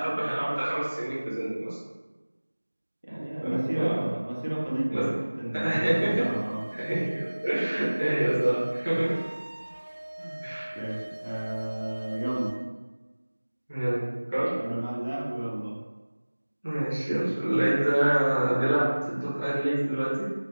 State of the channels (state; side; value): inverted; both; correlation -1.00